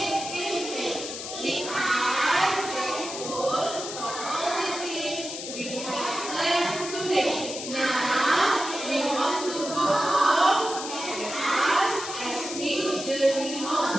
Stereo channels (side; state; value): left; noise; hiss, 8 dB below the sound